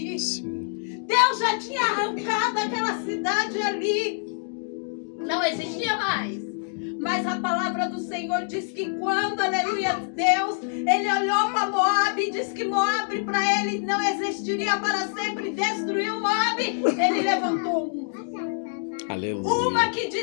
Sim. Deus já tinha arrancado aquela cidade ali. Não existia mais. Mas a palavra do Senhor diz que quando, aleluia, Deus, ele olhou para Moabe e disse que Moabe para ele não existiria para sempre, destruiu Moabe, ele levantou uma. Aleluia. Uma que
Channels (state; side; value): silent; right; digital silence